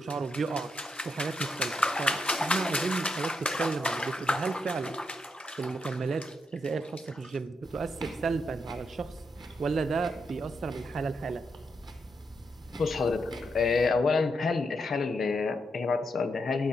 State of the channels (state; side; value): normal; both; correlation 0.81